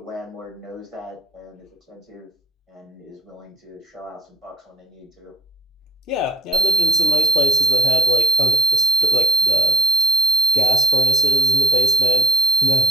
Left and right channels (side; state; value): both; normal; correlation 0.62